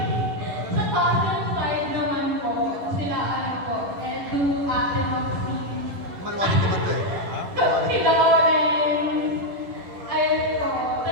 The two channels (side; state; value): left; late; 11 ms